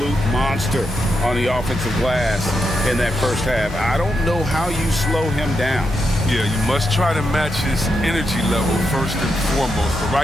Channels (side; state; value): both; normal; correlation 0.84